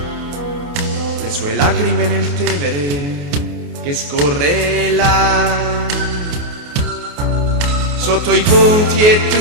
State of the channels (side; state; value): left; late; 28 ms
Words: le sue lacrime nel Tevere che scorre là. Sotto i ponti e